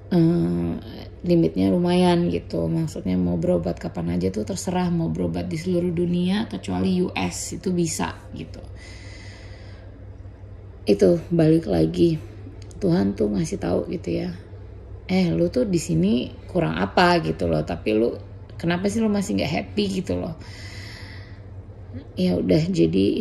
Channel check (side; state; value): both; identical; correlation 1.00